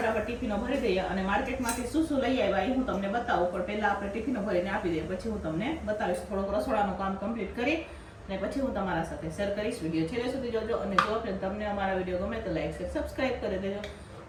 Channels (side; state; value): both; identical; correlation 1.00